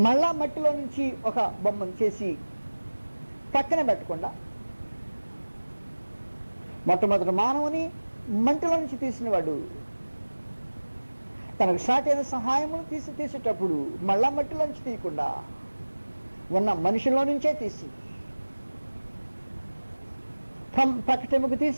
మళ్ళా మట్టిలో నుంచి ఒక బొమ్మను చేసి పక్కన పెట్టకుండా మొట్టమొదటి మానవుని మంటలో నుంచి తీసినవాడు తనకు సాటి అయిన సహాయమును తీసేటప్పుడు మళ్ళా మట్టిలో నుంచి తీయకుండా ఉన్న మనుషుల్లో నుంచే తీసి ప్రకటముకు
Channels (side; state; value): both; inverted; correlation -1.00